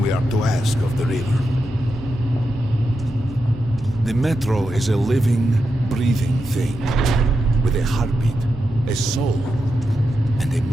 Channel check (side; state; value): both; normal; correlation 0.87